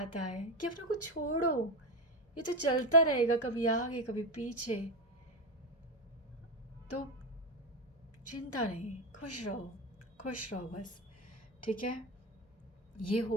है कि अपने को छोड़ो, ये तो चलता रहेगा, कभी आगे कभी पीछे। तो चिंता नहीं, खुश रहो, खुश रहो बस। ठीक है, ये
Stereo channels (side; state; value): both; normal; correlation 0.13